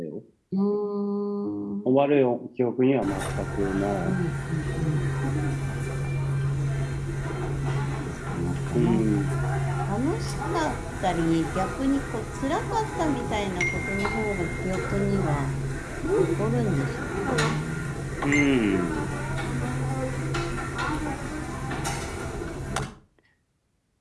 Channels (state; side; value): identical; both; correlation 1.00